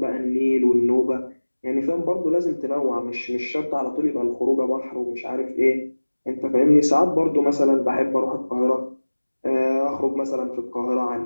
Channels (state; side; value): inverted; both; correlation -1.00